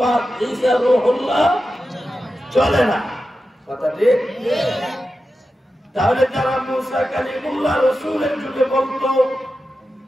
ঈসা রূহুল্লাহ চলে না, কথা ঠিক। তাহলে যারা মুসা কালিমুল্লাহ রাসূলের যুগে বলতো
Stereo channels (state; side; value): normal; both; correlation 0.91